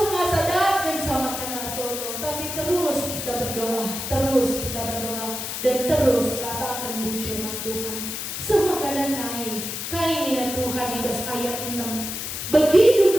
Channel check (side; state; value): left; noise; hiss, 5 dB below the sound